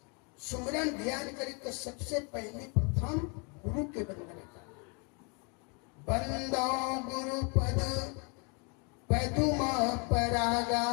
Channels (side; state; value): right; quieter; 34.1 dB